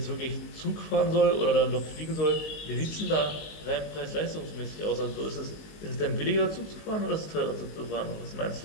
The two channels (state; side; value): late; right; 19 ms